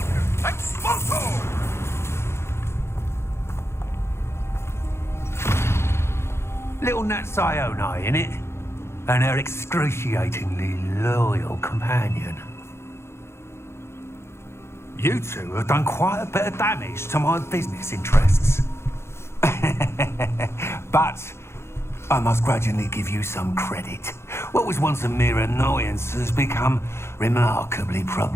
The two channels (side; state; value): right; late; 0.12 ms